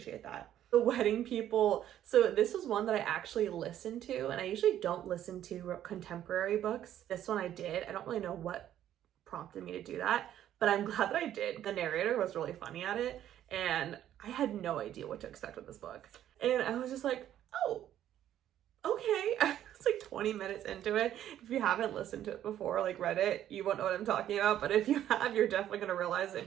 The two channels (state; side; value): quieter; left; 11.4 dB